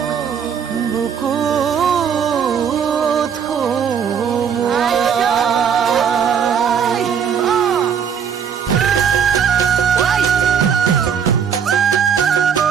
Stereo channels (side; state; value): left; quieter; 7.5 dB